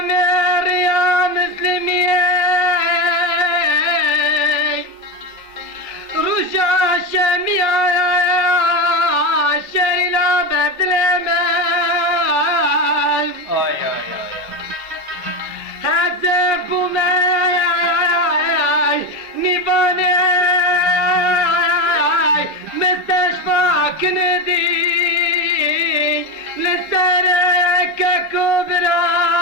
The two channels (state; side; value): normal; both; correlation 0.16